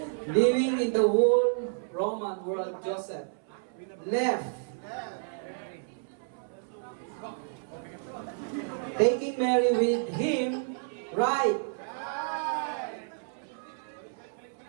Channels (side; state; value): left; silent; 58 dB below the other